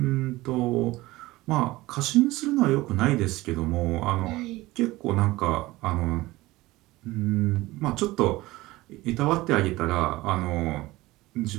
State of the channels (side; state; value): left; quieter; 19.1 dB